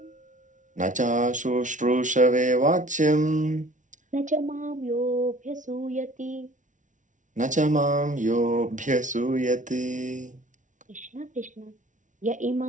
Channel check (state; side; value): late; left; 0.37 ms